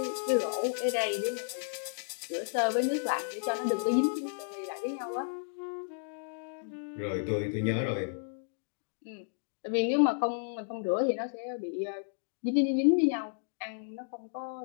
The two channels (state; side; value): silent; right; digital silence